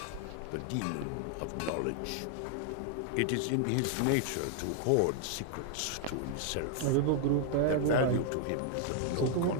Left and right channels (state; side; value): different; both; correlation 0.00